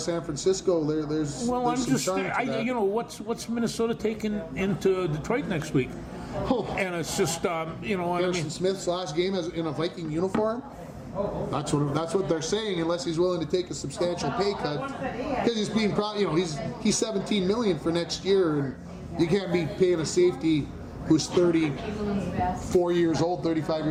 Francisco, there's well, I'm some just charm to that. you know, what's Minnesota taking into Detroit next week? And it's just you know, Harrison Smith's last game as in a Viking uniform. That's what they're saying, unless he's willing to take a substantial pay cut, because he's being he's $17 million for next year, and you can't be paying a safety who's 34 years old, 35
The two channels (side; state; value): both; identical; correlation 1.00